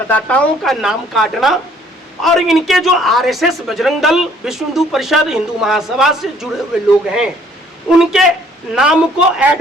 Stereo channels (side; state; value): both; normal; correlation 0.60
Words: का नाम काटना और इनके जो आरएसएस, बजरंग दल, विश्व हिंदू परिषद, हिंदू महासभा से जुड़े हुए लोग हैं उनके नाम को